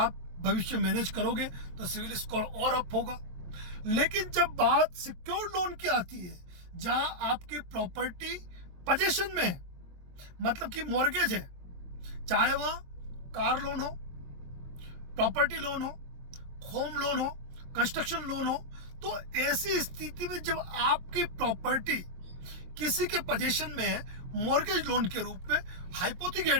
भविष्य मैनेज करोगे तो सिविल स्कोर और अप होगा। लेकिन जब बात सिक्योर्ड लोन की आती है, जहां आपकी प्रॉपर्टी पोजीशन में है, मतलब कि मॉर्गेज है, चाहे वह कार लोन हो, प्रॉपर्टी लोन हो, होम लोन हो, कंस्ट्रक्शन लोन हो, तो ऐसी स्थिति में जब आपकी प्रॉपर्टी किसी के पोजीशन में है, मॉर्गेज लोन के रूप में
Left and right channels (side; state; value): left; late; 23 ms